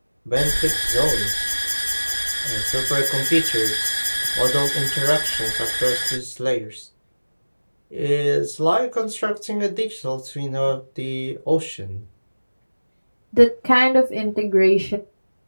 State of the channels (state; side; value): inverted; both; correlation -1.00